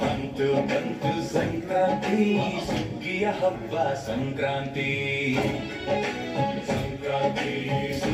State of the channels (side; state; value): both; identical; correlation 1.00